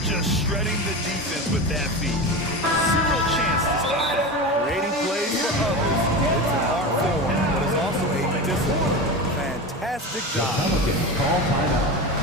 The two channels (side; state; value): both; normal; correlation 0.25